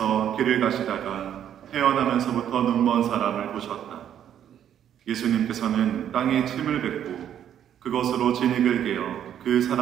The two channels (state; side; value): quieter; left; 9.9 dB